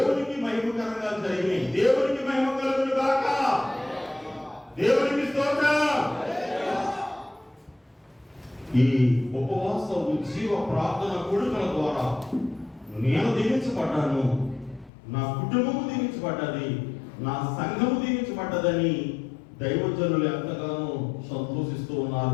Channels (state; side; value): drops out; right; at 14.9 s